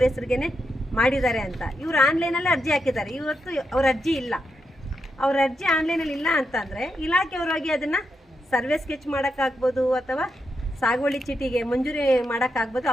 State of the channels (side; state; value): both; normal; correlation 0.84